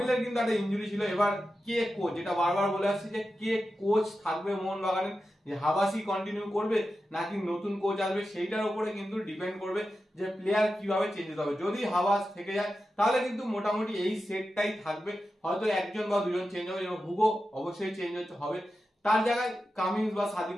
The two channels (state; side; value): normal; both; correlation 0.91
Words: কিন্তু একটা ইনজুরি ছিল। এবার কে কোচ, যেটা বারবার বলে আসছি, যে কে কোচ থাকবে মোহনবাগানের, যে হাবাসি কন্টিনিউ করবে নাকি নতুন কোচ আসবে, সেইটার উপরে কিন্তু ডিপেন্ড করবে যে প্লেয়ার কিভাবে চেঞ্জ হতে হবে। যদি হাবাস থেকে যায় তাহলে কিন্তু মোটামুটি এই সেটটাই থাকবে, হয়তো একজন বা দুজন চেঞ্জ হবে। এবং হুগো অবশ্যই চেঞ্জ হবে, তার জায়গায় কামিন্স বা